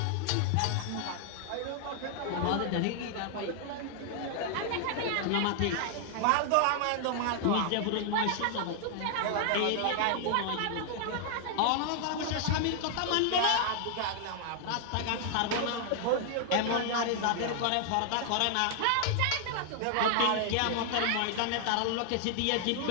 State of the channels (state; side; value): different; both; correlation 0.00